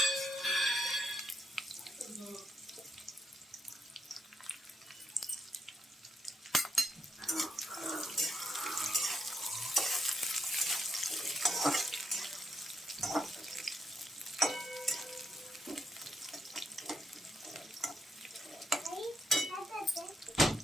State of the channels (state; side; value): normal; both; correlation 0.79